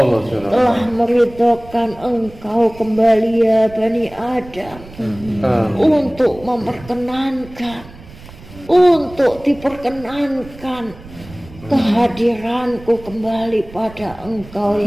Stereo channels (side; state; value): right; noise; rumble, 19 dB below the sound